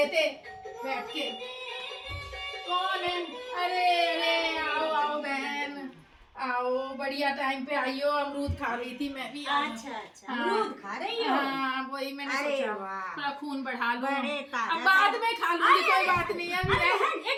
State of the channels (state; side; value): identical; both; correlation 1.00